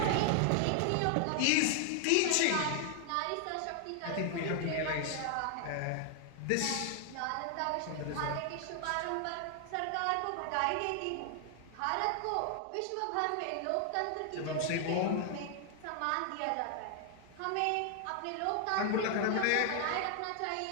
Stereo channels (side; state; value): both; different; correlation 0.00